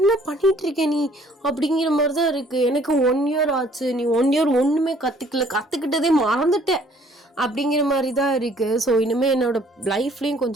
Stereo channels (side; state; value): both; normal; correlation 0.59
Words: பண்ணிகிட்ருக்க நீ அப்படிங்கிற மாதிரி தான் இருக்குது. எனக்கு 1 year ஆச்சு. நீ 1 year ஒன்றுமே கற்றுக்கிட்டதே மறந்துட்டேன் அப்படிங்கிற மாதிரி தான் இருக்குது. ஸோ இனிமேல் என்னோடய லைஃப்லேயும்